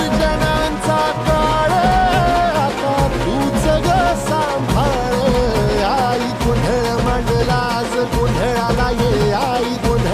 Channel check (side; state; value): both; identical; correlation 1.00